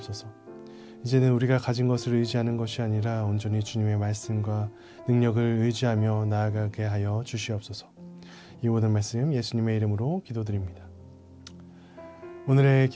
이제는 우리가 가진 것을 의지하는 것이 아니라 온전히 주님의 말씀과 능력을 의지하며 나아가게 하여 주시옵소서. 이 모든 말씀 예수님의 이름으로 기도드립니다. 오늘의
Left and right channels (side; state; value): both; identical; correlation 1.00